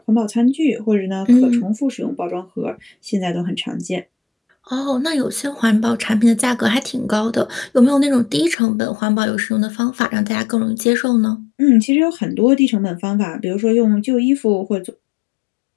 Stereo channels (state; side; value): drops out; right; at 8.6 s